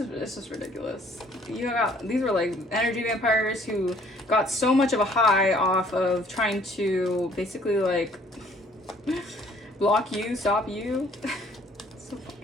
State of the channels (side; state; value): both; normal; correlation 0.59